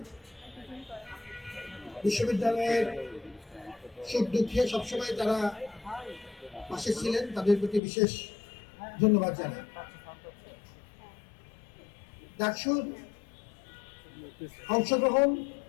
বিশ্ববিদ্যালয়ের সুখ দুঃখে সবসময় তারা পাশে ছিলেন, তাদের প্রতি বিশেষ ধন্যবাদ জানাই। ডাকসুর অংশগ্রহণ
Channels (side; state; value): right; drops out; at 7.8 s